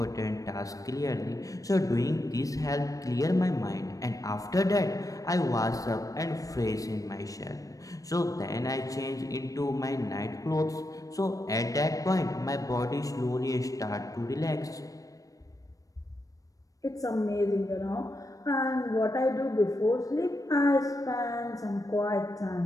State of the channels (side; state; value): right; late; 0.16 ms